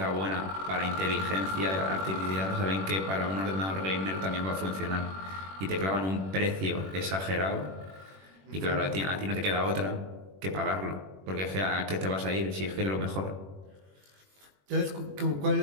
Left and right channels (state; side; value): late; left; 21 ms